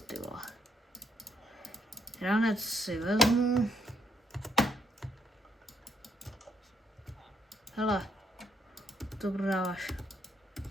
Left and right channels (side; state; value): both; normal; correlation 0.72